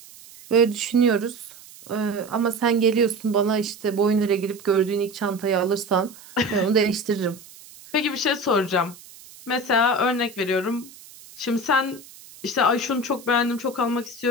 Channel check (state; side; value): noise; right; hiss, 20 dB below the sound